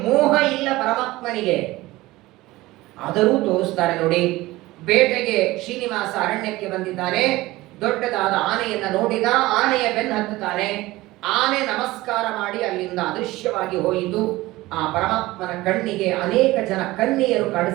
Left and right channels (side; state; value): left; quieter; 18.8 dB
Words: ಮೋಹ ಇಲ್ಲ ಪರಮಾತ್ಮನಿಗೆ. ಆದರೂ ತೋರಿಸ್ತಾರೆ ನೋಡಿ. ಬೇಟೆಗೆ ಶ್ರೀನಿವಾಸ ಅರಣ್ಯಕ್ಕೆ ಬಂದಿದ್ದಾನೆ. ದೊಡ್ಡದಾದ ಆನೆಯನ್ನ ನೋಡಿದ. ಆನೆಯ ಬೆನ್ನು ಹತ್ತುತ್ತಾನೆ. ಆನೆ ನಮಸ್ಕಾರ ಮಾಡಿ ಅಲ್ಲಿಂದ ಅದೃಶ್ಯವಾಗಿ ಹೋಯಿತು. ಆ ಪರಮಾತ್ಮನ ಕಣ್ಣಿಗೆ ಅನೇಕ ಜನ ಕನ್ನಿಯರು